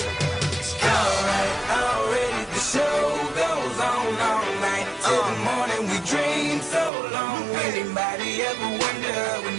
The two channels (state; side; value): drops out; left; at 6.9 s